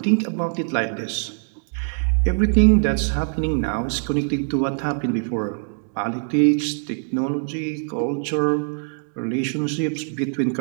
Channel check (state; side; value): silent; left; 64 dB below the other